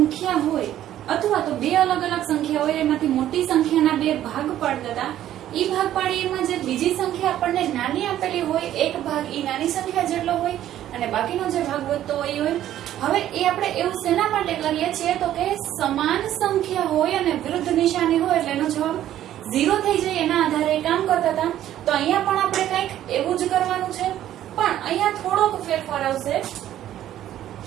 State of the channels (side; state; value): left; quieter; 12.2 dB